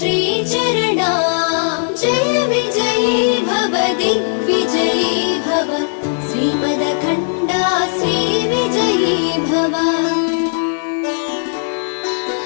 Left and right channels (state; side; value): silent; right; 57 dB below the other